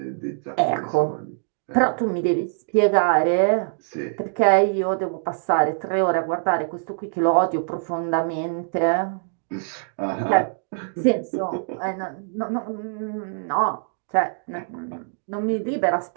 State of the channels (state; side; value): silent; left; digital silence